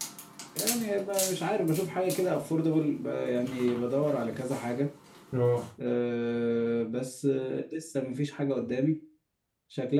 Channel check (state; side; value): identical; both; correlation 1.00